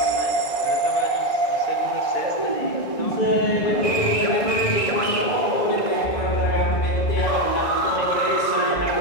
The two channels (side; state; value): right; late; 1.6 ms